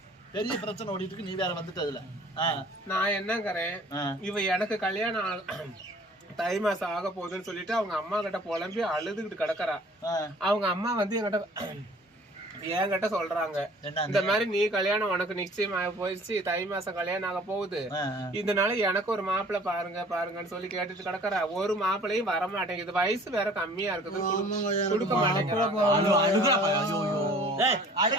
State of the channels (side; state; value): both; normal; correlation 0.50